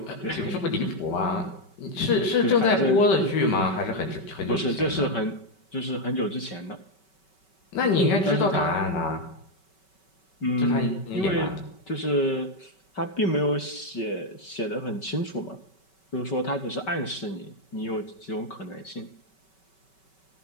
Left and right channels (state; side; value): late; right; 5.3 ms